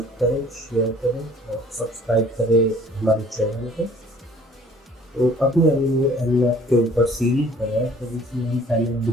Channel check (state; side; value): normal; both; correlation 0.54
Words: करें, शेयर करें और सब्सक्राइब करें हमारे चैनल को। तो अपने अभी वो एनमैप के ऊपर सीरीज बनाया, तो इसमें हम पहले